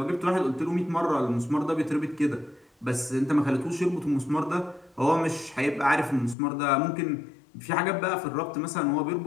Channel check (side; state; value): right; drops out; at 6.4 s